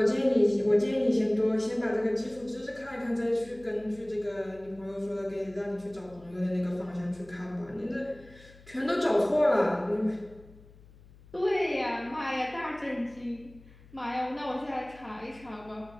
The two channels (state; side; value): noise; left; hum, 23 dB below the sound